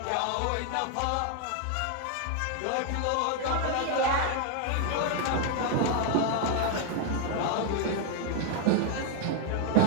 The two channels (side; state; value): both; different; correlation 0.00